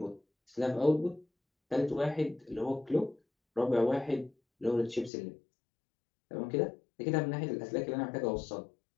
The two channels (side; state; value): right; drops out; at 5.1 s